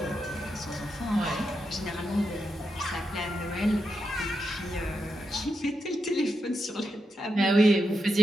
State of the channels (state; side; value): normal; both; correlation 0.85